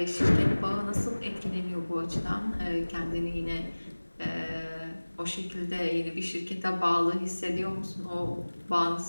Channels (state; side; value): inverted; both; correlation -1.00